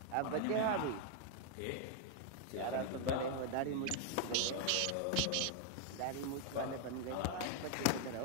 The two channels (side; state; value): both; different; correlation 0.00